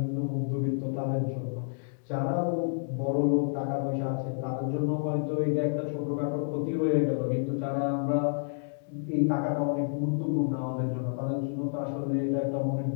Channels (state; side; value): silent; right; digital silence